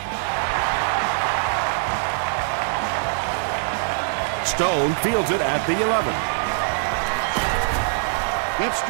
Stone fields it at the 11. Gets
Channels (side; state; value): left; silent; digital silence